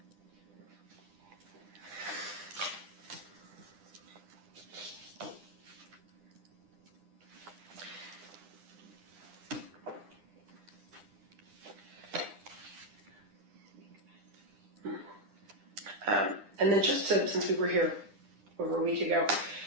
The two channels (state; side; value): late; left; 9.9 ms